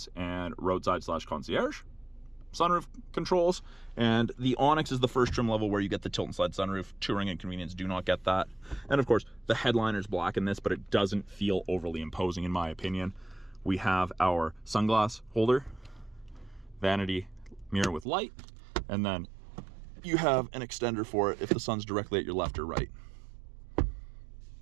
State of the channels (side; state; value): left; drops out; at 18.1 s